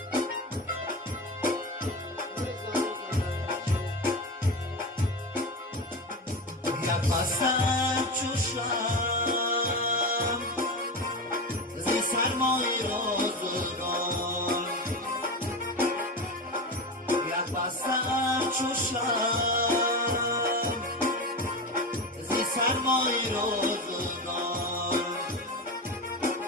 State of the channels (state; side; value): normal; both; correlation 0.22